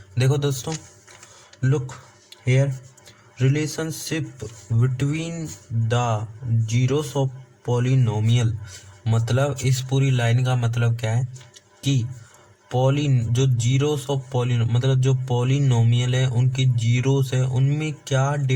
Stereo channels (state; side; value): identical; both; correlation 1.00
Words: देखो दोस्तों, look here, relationship between the zeros of polynomial, मतलब इस पूरी line का मतलब क्या है कि जो जीरोस ऑफ पॉलिनो मतलब जो पॉलिनोमियल है उनके जीरोस है उनमें क्या